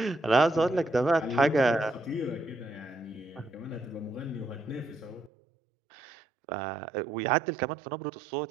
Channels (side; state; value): left; drops out; at 5.3 s